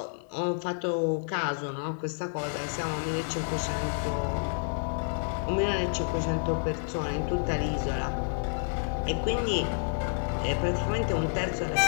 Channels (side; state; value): right; silent; 58 dB below the other